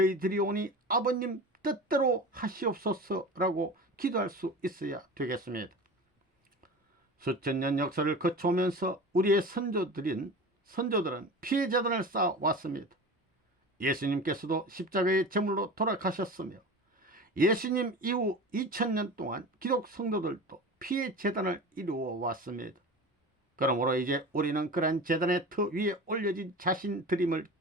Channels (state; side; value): normal; both; correlation 0.33